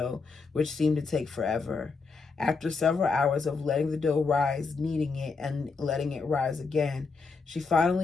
which seemed to take forever. After several hours of letting the dough rise, kneading it, and letting it rise again, she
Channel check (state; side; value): quieter; right; 4.5 dB